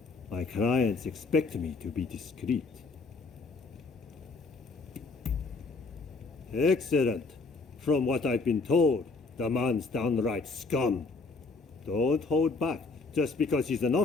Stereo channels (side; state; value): right; quieter; 3.9 dB